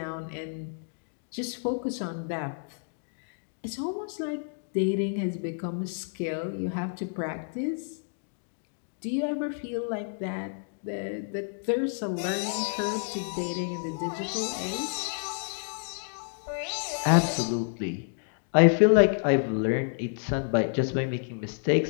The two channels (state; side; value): silent; right; digital silence